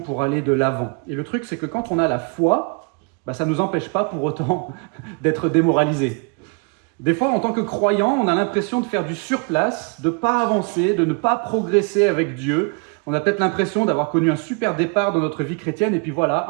aller de l'avant. Et le truc c'est que quand on a la foi, ça ne nous empêche pas pour autant d'être démoralisés. Des fois, en tant que croyant, on a l'impression de faire du surplace, de ne pas avancer, de ne pas progresser avec Dieu. On a peut-être l'impression d'avoir connu un super départ dans notre vie chrétienne, et puis voilà,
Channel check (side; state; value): left; quieter; 33.7 dB